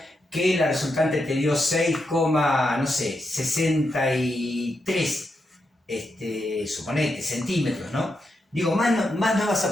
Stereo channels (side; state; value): both; normal; correlation 0.84